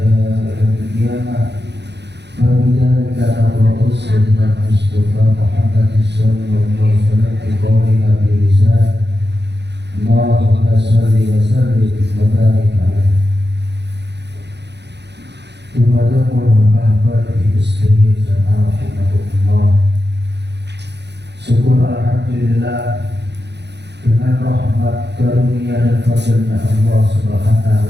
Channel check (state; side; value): late; left; 0.50 ms